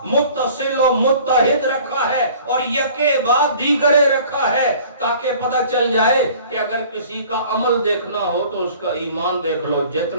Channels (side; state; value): both; inverted; correlation -0.49